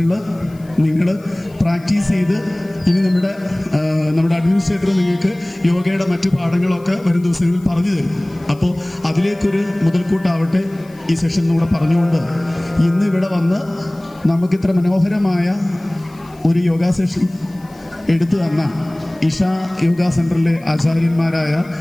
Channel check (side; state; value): left; noise; hiss, 28 dB below the sound